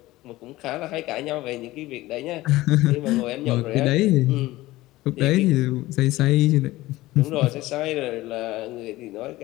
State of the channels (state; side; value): quieter; right; 17.9 dB